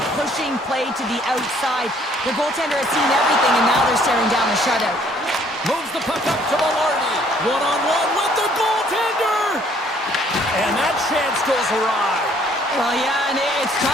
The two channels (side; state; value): both; normal; correlation 0.62